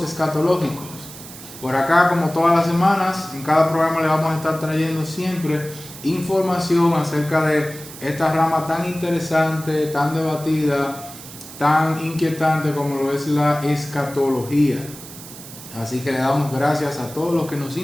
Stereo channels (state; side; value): noise; right; hiss, 15 dB below the sound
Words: Escatológicos. Por acá, como todas las semanas, en cada programa le vamos a estar trayendo siempre información acerca de esta rama tan interesante, tan debatida, tan inquietante como lo es la escatología. Así que le damos gracias a todos los que nos